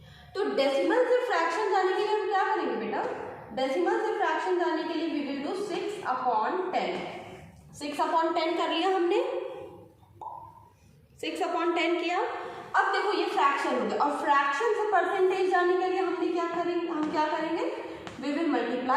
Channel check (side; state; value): both; identical; correlation 1.00